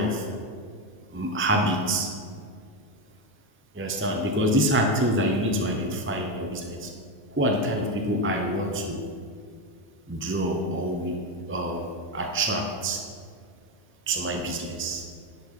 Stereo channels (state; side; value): normal; both; correlation 0.12